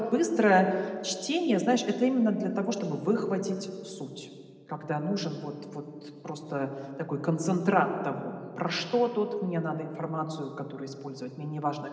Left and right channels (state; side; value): identical; both; correlation 1.00